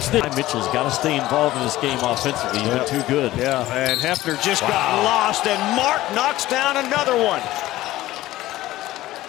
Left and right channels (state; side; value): quieter; right; 16.2 dB